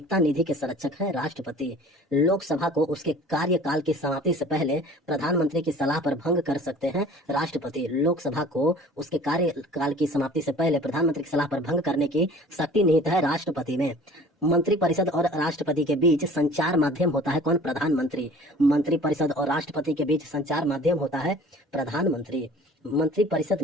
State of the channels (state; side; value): normal; both; correlation 0.47